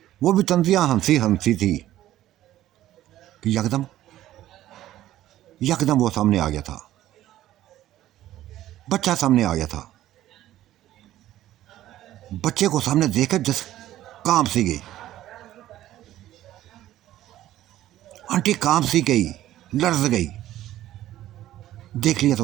वो भी तंजिया हंसी थी कि यकदम वो सामने आ गया था, बच्चा सामने आ गया था। बच्चे को सामने देखकर जस कांप सी गई, आंटी कांप सी गई, लर्ज गई। देख लिया था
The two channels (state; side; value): quieter; left; 13.7 dB